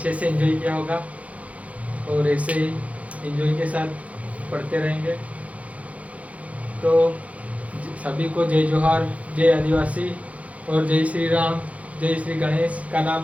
से एंजॉय किया होगा और ऐसे ही एंजॉय के साथ पढ़ते रहेंगे। तो सभी को जय जोहार, जय आदिवासी और जय श्री राम, जय श्री गणेश का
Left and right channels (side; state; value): left; late; 0.066 ms